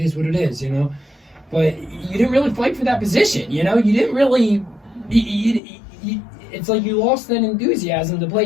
what it is. You know, but you didn't really fight for that position. You know, you didn't really. It's like you lost that enthusiasm to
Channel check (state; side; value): drops out; right; at 5.6 s